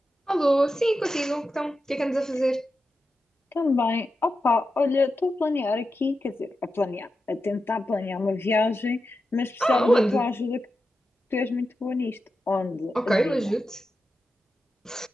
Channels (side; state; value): both; normal; correlation 0.90